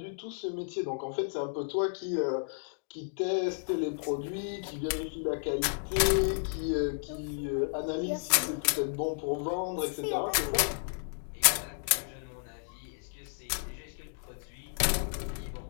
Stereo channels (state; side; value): silent; right; digital silence